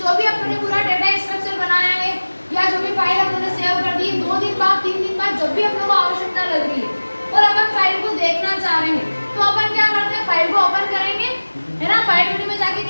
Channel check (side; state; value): both; inverted; correlation -1.00